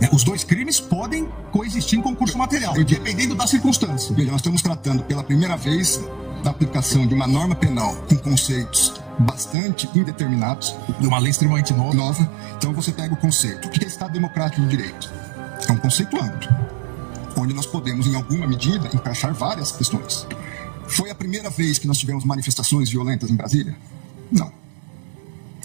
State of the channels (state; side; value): drops out; left; at 9.6 s